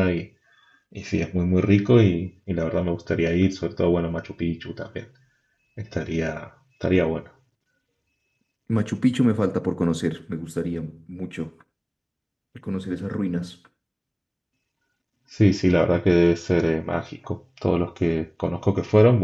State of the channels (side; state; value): both; identical; correlation 1.00